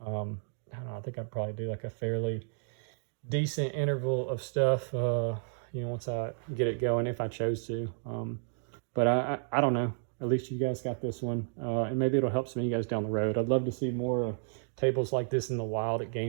I don't know, I think I'd probably do like a fairly decent interval of stuff, you know, once I get it going, if I chose to. But I don't know. At least you guys got this one, and maybe it'll help some of you guys down the road. I'd love to see more tables like this in the wild at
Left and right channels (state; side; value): silent; left; digital silence